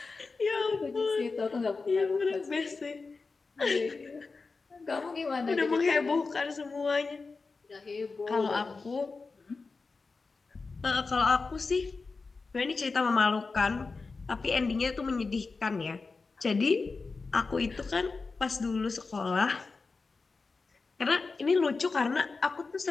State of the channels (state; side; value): quieter; right; 4.2 dB